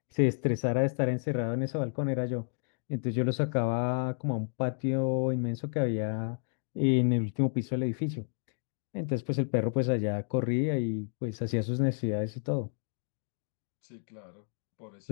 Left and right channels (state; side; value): silent; right; 57 dB below the other